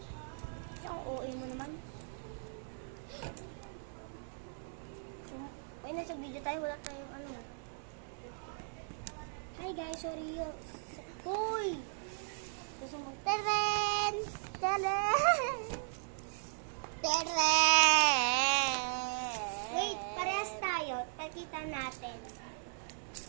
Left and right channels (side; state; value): left; silent; digital silence